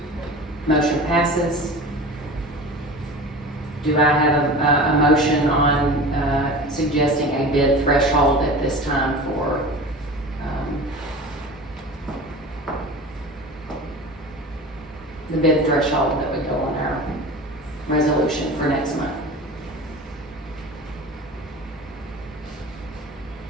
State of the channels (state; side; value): normal; both; correlation 0.35